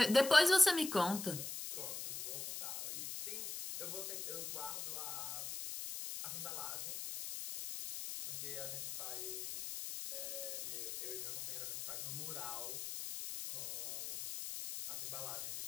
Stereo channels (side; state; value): left; noise; hiss, 6 dB below the sound